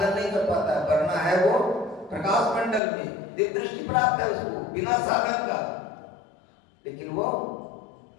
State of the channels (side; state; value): right; drops out; at 2.8 s